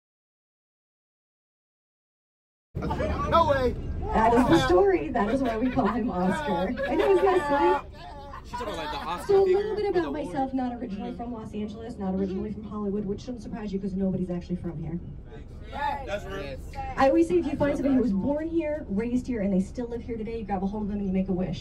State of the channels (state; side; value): identical; both; correlation 1.00